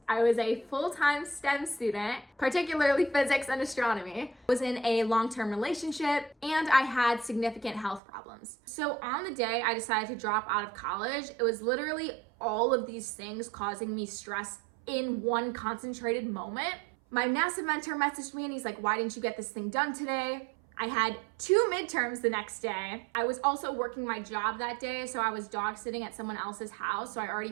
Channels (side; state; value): left; drops out; at 8.0 s